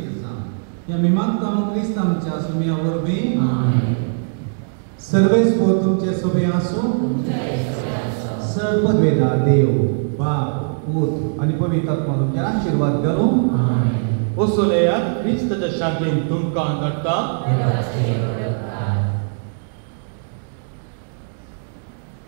जावं या मी मागता क्रिस्त आमच्या सुम्या वरवीं सर्वेस्व तुमचे सोबे आसूं सर्ववेदा देव बाप पूत आनी पवित्र आत्मा तुमचे आशीर्वाद घालूं ओसोलेयात क्रिस्ताच्या शांतीन तुमकां धाडटा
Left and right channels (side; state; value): left; silent; digital silence